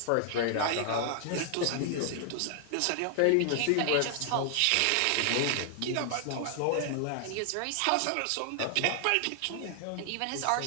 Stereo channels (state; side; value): different; both; correlation 0.00